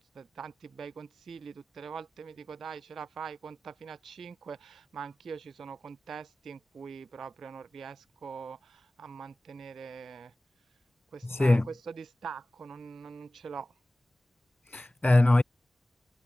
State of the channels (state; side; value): normal; both; correlation 0.97